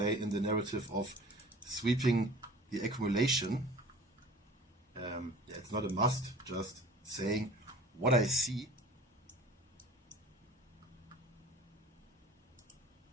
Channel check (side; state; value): both; normal; correlation 0.45